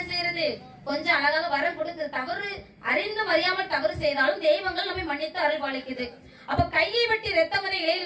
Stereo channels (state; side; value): identical; both; correlation 1.00